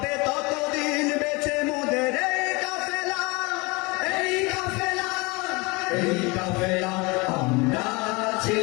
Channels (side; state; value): right; quieter; 26.2 dB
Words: ততদিন বেঁচে মোদের এই কাফেলা, এই কাফেলা, এই কাফেলা। আমরা